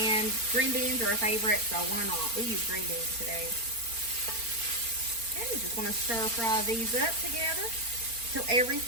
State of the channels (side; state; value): left; late; 4.3 ms